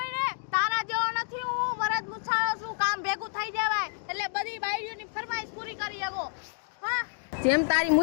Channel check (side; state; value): right; silent; 59 dB below the other